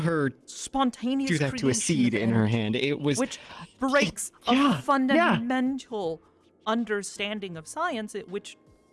spontaneous do that to a seed in her hand. It was, which breaks a fundamental understanding of science, which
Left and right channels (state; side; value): identical; both; correlation 1.00